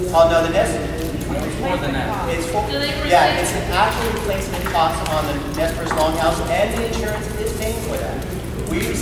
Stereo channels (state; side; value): identical; both; correlation 1.00